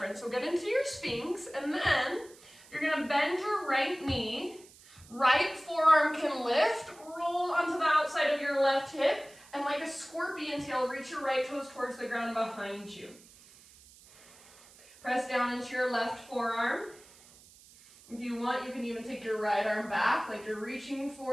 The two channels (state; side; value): noise; right; hiss, 23 dB below the sound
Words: So get into your Sphinx, and then you're gonna bend your right knee. Right forearm can lift, roll onto the outside of your left hip, and like a scorpion tail, reach your right toes towards the ground behind you. Press down into your left forearm. If you want, you can even take your right arm back, like you're reaching